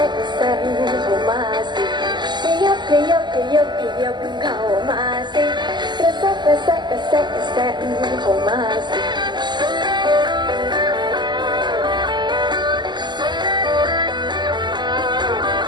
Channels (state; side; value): late; left; 0.21 ms